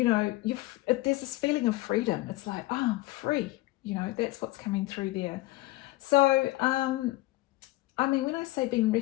know, there's this feeling of freedom. It's like, oh, I'm free. You know, that's what's coming through there. So, I mean, when I say being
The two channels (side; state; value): right; quieter; 19.4 dB